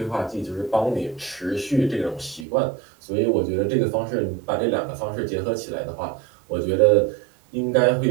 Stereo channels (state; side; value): drops out; left; at 2.5 s